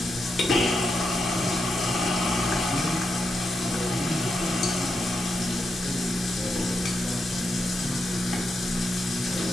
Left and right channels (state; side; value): normal; both; correlation 0.84